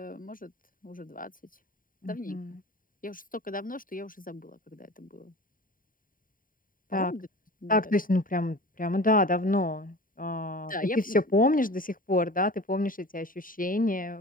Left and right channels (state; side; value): late; right; 0.40 ms